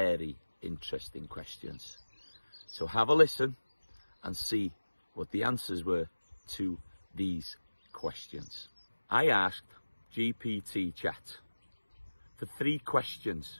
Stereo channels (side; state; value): both; inverted; correlation -1.00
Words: interesting questions. So have a listen and see what the answers were to these questions. I asked GPT Chat for three